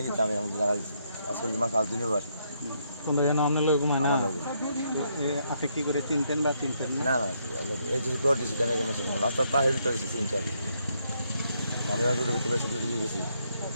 আমি জায়গা দিচ্ছি আসলে আমার 5 দিনই বার কোন জায়গা নাম নিলে ঘুমায় না আপনি কি করে চিনতেন বা চিনতেন না না এই যে পর দিছি জানা গেছে রাস্তা পাহাড় তো আছে 3-4 আমি আর রোডে ভিতরে সব দিয়ে গেছি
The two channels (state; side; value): inverted; both; correlation -0.75